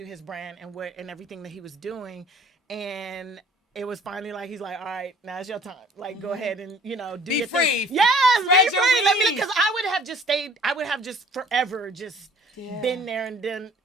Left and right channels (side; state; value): both; normal; correlation 0.53